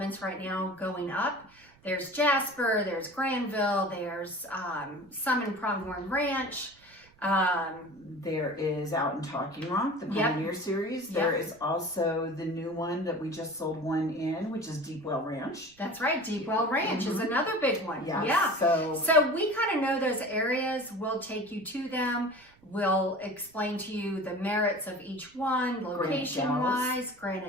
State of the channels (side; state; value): right; noise; rumble, 29 dB below the sound